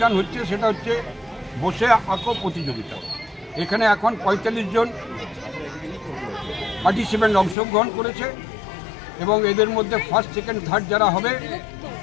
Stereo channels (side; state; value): right; drops out; at 7.6 s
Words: হচ্ছে সেটা হচ্ছে বসে আঁকো প্রতিযোগিতা। এখানে এখন ৪৫ জন পার্টিসিপেন্ট অংশগ্রহণ করেছে এবং এদের মধ্যে ফার্স্ট, সেকেন্ড, থার্ড যারা হবে